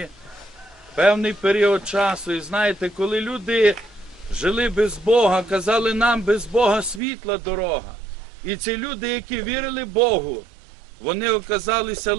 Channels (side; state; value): left; drops out; at 7.0 s